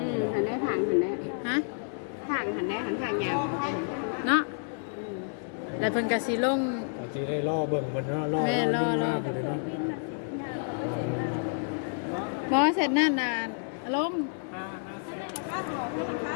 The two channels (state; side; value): silent; right; 58 dB below the other